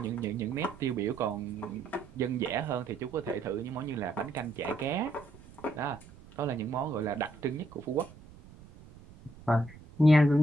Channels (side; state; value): right; noise; rumble, 20 dB below the sound